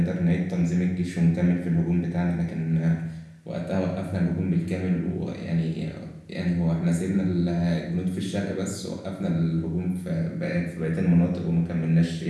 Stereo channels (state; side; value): identical; both; correlation 1.00